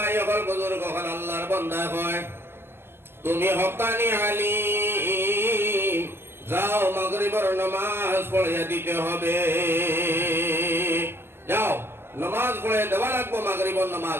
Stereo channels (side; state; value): left; late; 0.11 ms